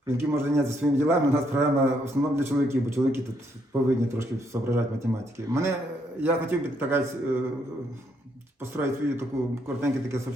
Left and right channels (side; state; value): both; normal; correlation 0.73